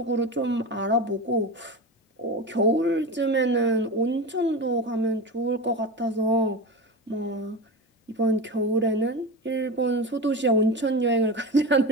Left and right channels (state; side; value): normal; both; correlation 0.24